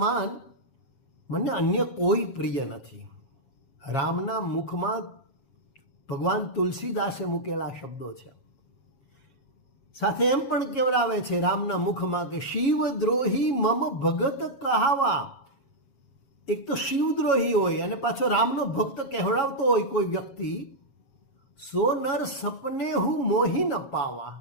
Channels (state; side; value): late; right; 7.3 ms